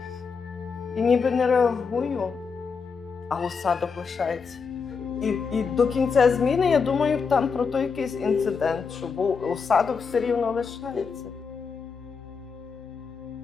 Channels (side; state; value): right; quieter; 5.5 dB